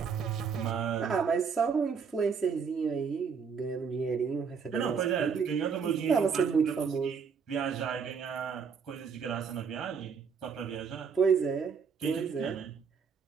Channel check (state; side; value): quieter; left; 6.1 dB